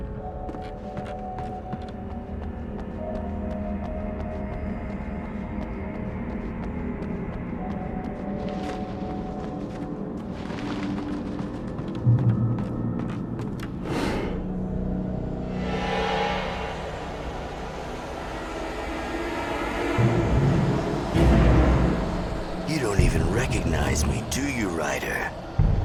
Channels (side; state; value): both; identical; correlation 1.00